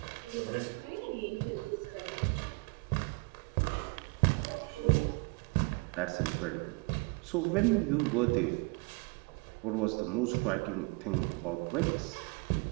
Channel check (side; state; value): left; quieter; 29.6 dB